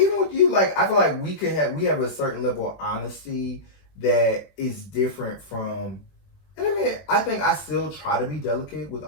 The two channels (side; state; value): right; late; 21 ms